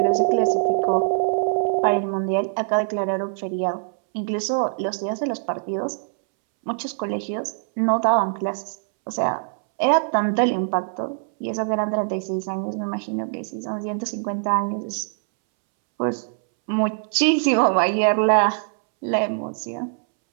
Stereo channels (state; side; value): silent; left; 63 dB below the other